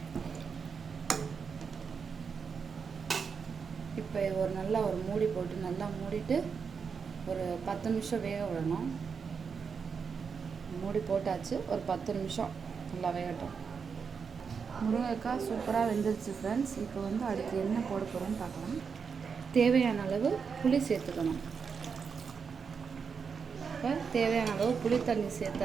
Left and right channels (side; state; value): left; quieter; 5.9 dB